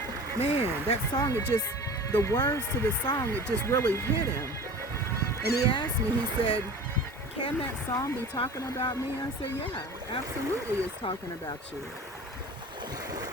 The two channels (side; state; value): both; normal; correlation 0.38